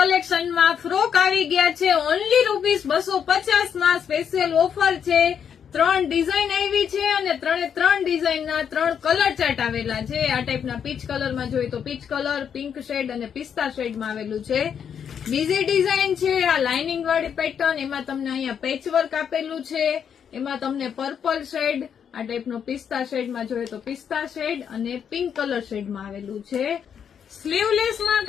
frock આવી ગયા છે. ઓનલી ₹250 માં સ્પેશિયલ ઓફર છે. 3 ડિઝાઇન આવી છે અને 3 ડિઝાઇનના 3 કલર ચાર્ટ આવેલા છે. આ ટાઈપના પીચ કલરમાં જોઈએ તો પીચ કલર, પિંક શેડ અને પિસ્તા શેડમાં આવેલું છે. બીજી ડિઝાઇન છે આ લાઇનિંગ વાળી પેટર્ન. એમાં તમને અહીંયા પેચવર્ક આપેલું છે. એમાં તમને પર્પલ શેડ, આ ટાઈપનો પિસ્તા શેડમાં જોઈએ તો પિસ્તા શેડ અને પિંક કલર શેડમાં આવેલું છે. સ્લીવલેસમાં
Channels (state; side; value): quieter; right; 7.9 dB